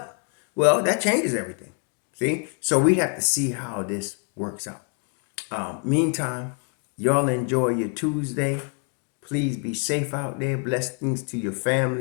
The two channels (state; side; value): quieter; right; 38.8 dB